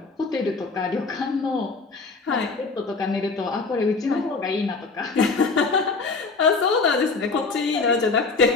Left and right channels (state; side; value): quieter; right; 4.2 dB